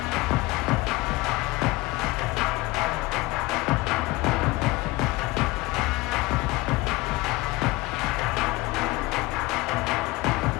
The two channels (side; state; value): right; quieter; 21.4 dB